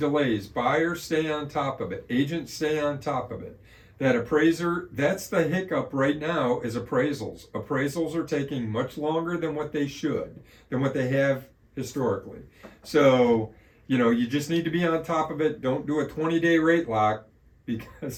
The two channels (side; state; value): both; identical; correlation 1.00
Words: Buyers stay on top of it. Agents stay on top of it. That appraiser, that's the hiccup right now, is appraisals. Appraisals are taking much longer than what they should, than what they have historically. So, you just need to be on top of it. Don't do a 20-day rate lock